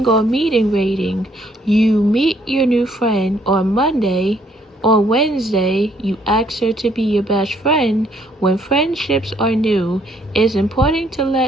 meeting rating. You meet your new friend on Monday. On Wednesday, you ask her to be your best friend. When friendships are new, it's important to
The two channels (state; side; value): normal; both; correlation 0.67